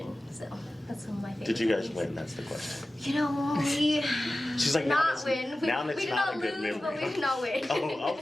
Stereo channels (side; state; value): both; normal; correlation 0.95